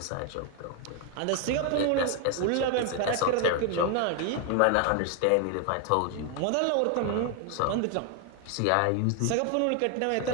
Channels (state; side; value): different; both; correlation 0.01